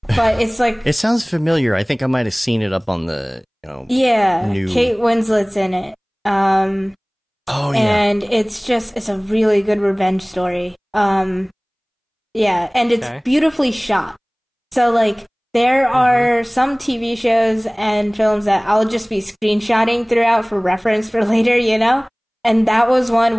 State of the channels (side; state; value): both; identical; correlation 1.00